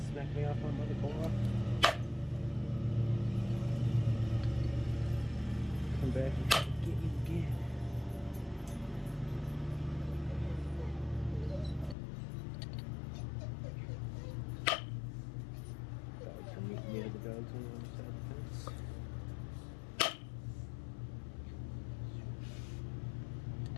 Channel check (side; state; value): right; drops out; at 12.0 s